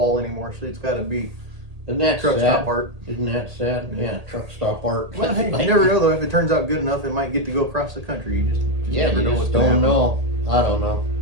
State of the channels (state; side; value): late; left; 1.8 ms